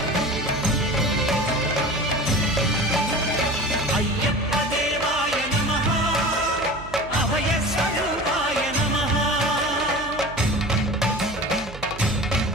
అయ్యప్ప దేవాయ నమః అభయ స్వరూపాయ నమః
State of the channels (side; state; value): right; noise; hum, 14 dB below the sound